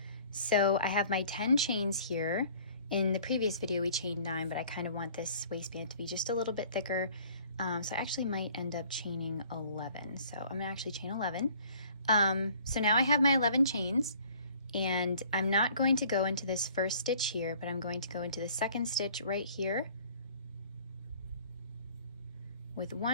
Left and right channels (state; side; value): inverted; both; correlation -0.54